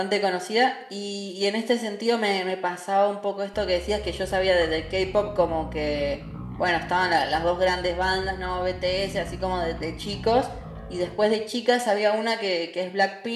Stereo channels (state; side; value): identical; both; correlation 1.00